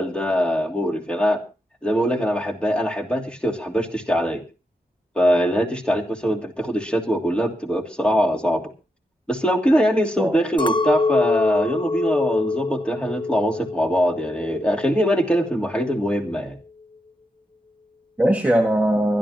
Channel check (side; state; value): both; normal; correlation 0.84